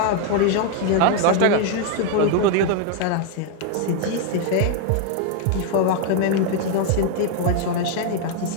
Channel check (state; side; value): different; both; correlation 0.00